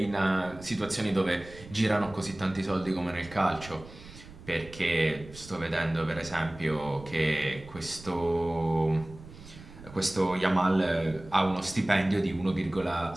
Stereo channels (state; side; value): noise; right; rumble, 18 dB below the sound